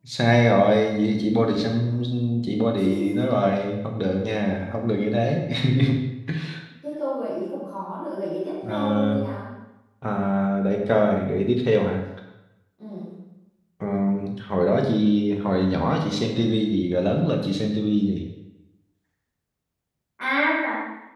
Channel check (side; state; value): both; identical; correlation 1.00